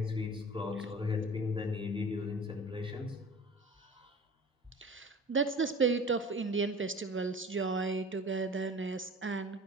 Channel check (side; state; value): both; normal; correlation 0.41